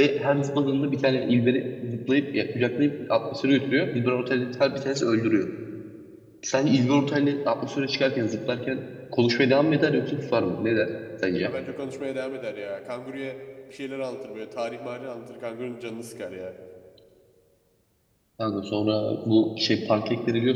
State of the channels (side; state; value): both; identical; correlation 1.00